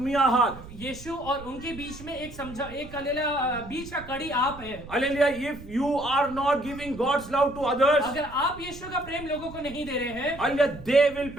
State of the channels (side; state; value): right; noise; rumble, 16 dB below the sound